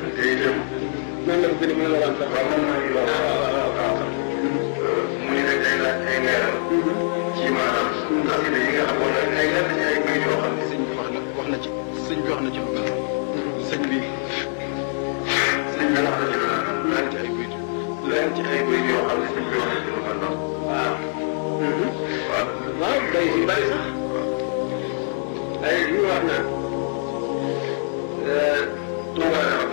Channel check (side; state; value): right; silent; digital silence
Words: te itam noonu la ko gën a mën a waral sax. waaw moom mooy loolu waaw mu ni nag day laaj ay leeral ci maanaam xasida yi nga xam wala ay lenn ci ay mbir yoo xam ne sëñ bi wax na ci sëñ bi wax na ci lu mel noonu sëñ bi wax na ci lu mel noonu lenn ci ay mbir lenn ci ay mbir yoo xam ne sëñ bi wax na ci lu mel noonu waaw. waaw waaw day si bari sax ay li ñu wax naan. Touba dafa am